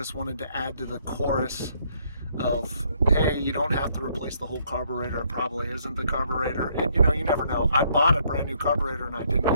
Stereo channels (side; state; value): both; inverted; correlation -0.68